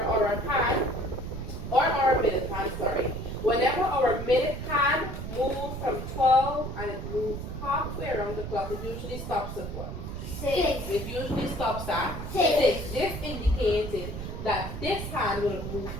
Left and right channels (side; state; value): right; noise; rumble, 6 dB below the sound